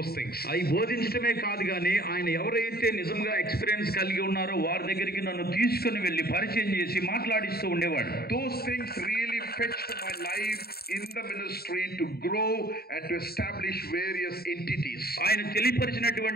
things. అవి బోధించడమే కాదు కానీ ఆయన ఎవరైతే నిజంగా ఎక్స్పీరియన్స్ కలిగి ఉన్నారో వారి దగ్గరికి నన్ను తీసుకుని వెళ్ళి పరిచయం చేసి మాట్లాడిస్తూ ఉండేవాడు. Those things really fetched my life in the ministry to grow and to establish various entities. ఆయన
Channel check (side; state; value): right; late; 0.45 ms